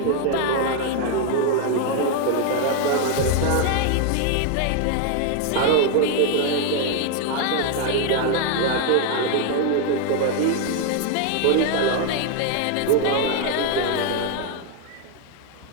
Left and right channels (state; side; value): different; both; correlation 0.01